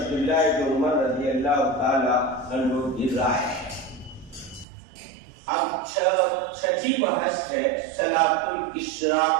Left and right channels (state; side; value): drops out; left; at 4.7 s